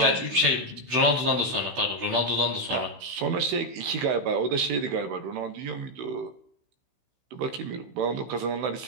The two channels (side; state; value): left; late; 16 ms